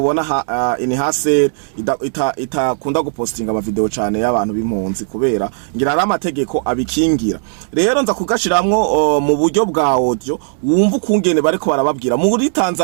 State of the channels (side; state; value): left; silent; digital silence